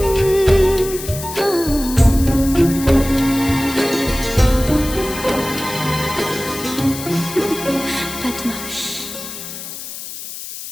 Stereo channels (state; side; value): noise; left; hiss, 10 dB below the sound